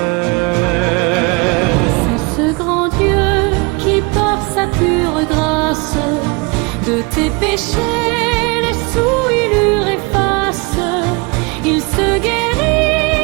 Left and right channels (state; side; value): quieter; left; 28.7 dB